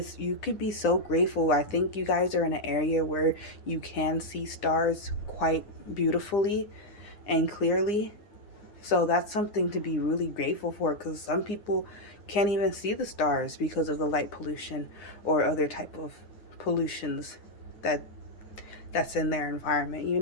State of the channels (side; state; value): right; late; 9.6 ms